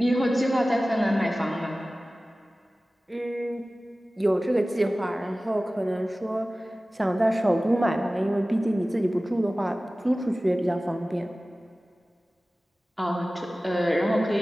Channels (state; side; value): normal; both; correlation 0.97